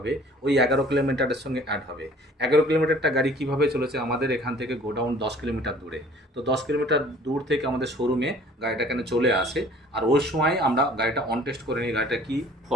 ওই 11 কিলোমিটারের সঙ্গে অ্যাড হবে। 11 কিলোমিটারটা গাড়ি কীভাবে চলেছে, আমাদের এখান থেকে গোডাউন 10 কিলোমিটার দূরে। তো 10 কিলোমিটার দূর থেকে আমাদের শোরুমে গাড়িটা এখানে চলে আসে। আর ওই সময় আমরা গাড়িটা অন টেস্ট করে নিই, গাড়িটা কী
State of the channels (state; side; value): normal; both; correlation 0.51